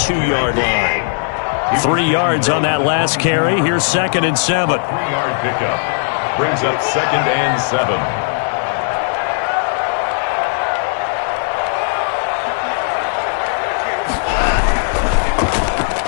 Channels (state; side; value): silent; right; digital silence